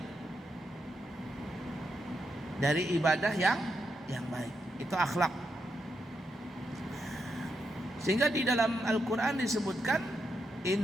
Dari ibadah yang baik, itu akhlak. Sehingga di dalam Al-Quran disebutkan,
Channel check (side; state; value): both; normal; correlation 0.82